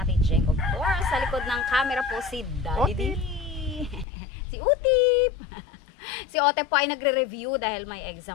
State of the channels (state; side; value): drops out; right; at 4.0 s